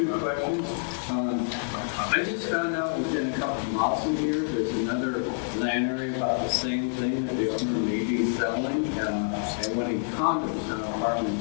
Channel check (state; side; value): silent; right; digital silence